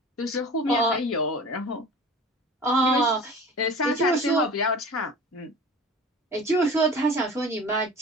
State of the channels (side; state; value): both; normal; correlation 0.39